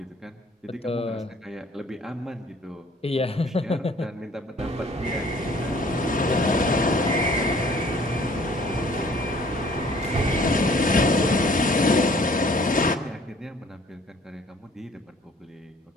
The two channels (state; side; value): normal; both; correlation 0.56